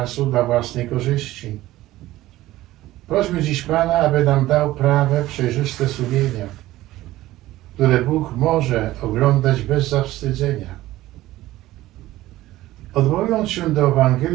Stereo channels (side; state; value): left; quieter; 16.1 dB